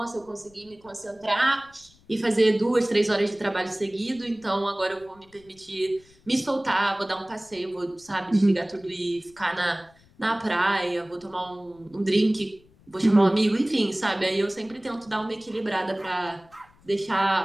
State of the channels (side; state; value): left; noise; rumble, 29 dB below the sound